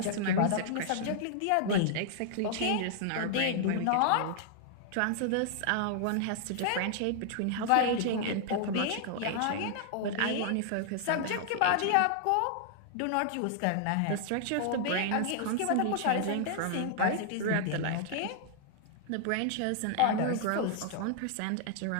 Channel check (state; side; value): different; both; correlation -0.01